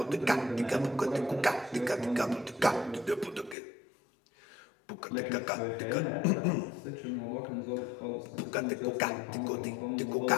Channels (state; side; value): drops out; right; at 3.6 s